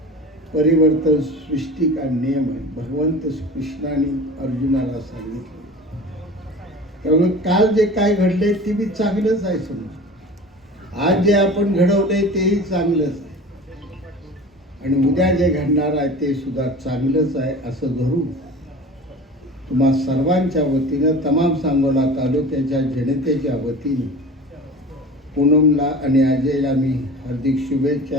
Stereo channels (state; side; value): normal; both; correlation 0.37